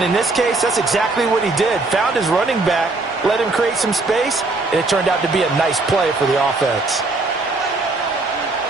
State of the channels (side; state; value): left; quieter; 3.3 dB